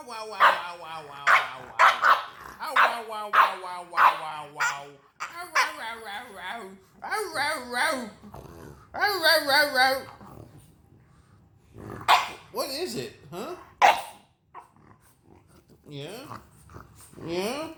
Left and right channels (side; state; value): both; identical; correlation 1.00